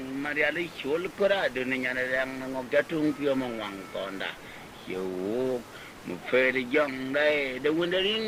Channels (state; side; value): identical; both; correlation 1.00